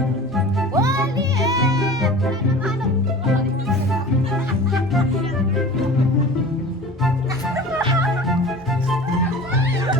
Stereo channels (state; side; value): normal; both; correlation 0.39